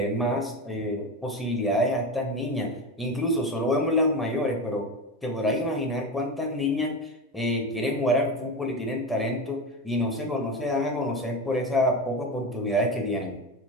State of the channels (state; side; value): normal; both; correlation 0.21